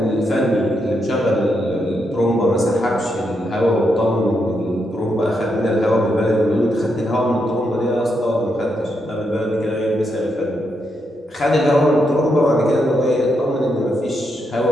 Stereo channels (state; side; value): normal; both; correlation 0.81